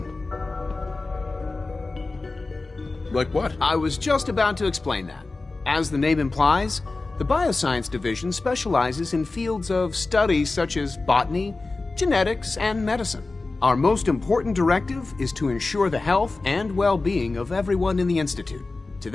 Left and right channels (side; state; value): right; quieter; 3.5 dB